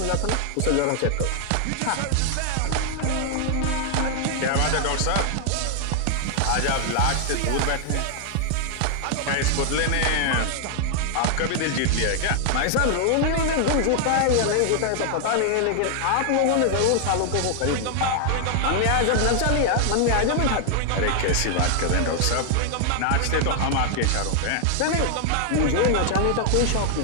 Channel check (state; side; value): different; both; correlation 0.00